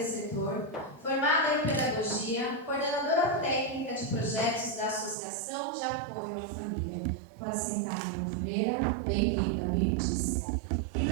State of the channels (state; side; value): drops out; left; at 5.2 s